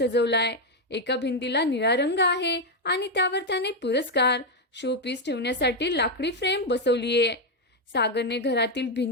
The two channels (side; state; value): both; normal; correlation 0.04